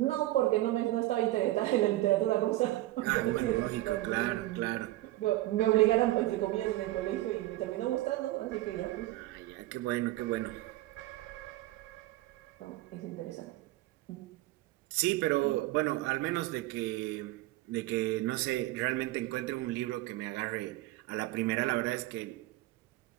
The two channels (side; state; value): left; quieter; 17.1 dB